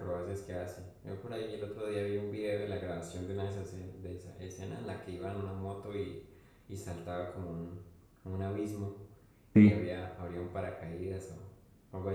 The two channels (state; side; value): identical; both; correlation 1.00